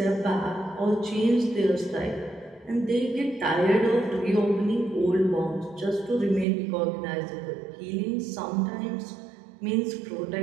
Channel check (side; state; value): left; drops out; at 6.5 s